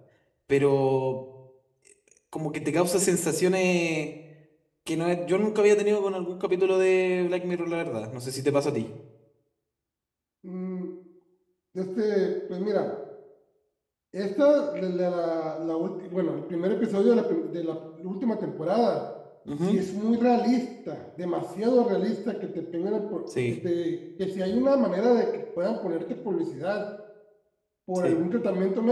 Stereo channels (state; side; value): identical; both; correlation 1.00